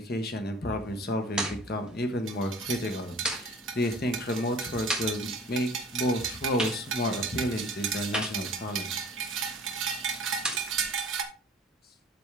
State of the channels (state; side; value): normal; both; correlation 0.46